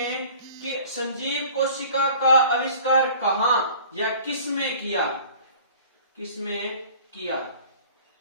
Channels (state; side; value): inverted; both; correlation -0.47